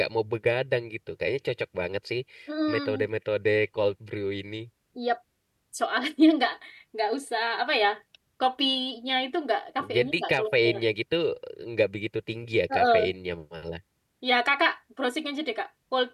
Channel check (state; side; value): identical; both; correlation 1.00